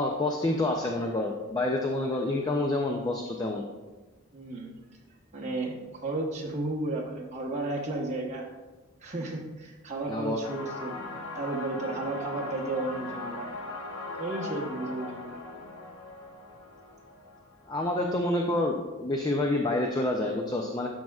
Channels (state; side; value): normal; both; correlation 0.43